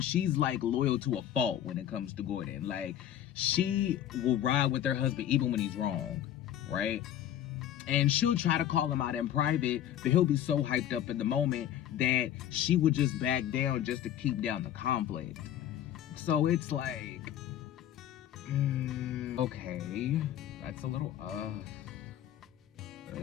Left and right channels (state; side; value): quieter; right; 11.0 dB